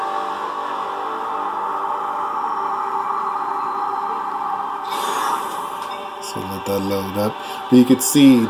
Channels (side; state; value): both; identical; correlation 1.00